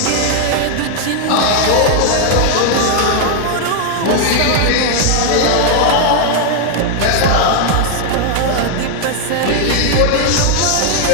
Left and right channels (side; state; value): both; different; correlation 0.00